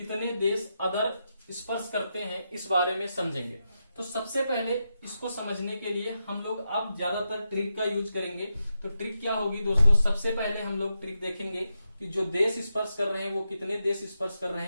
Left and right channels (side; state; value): both; inverted; correlation -0.87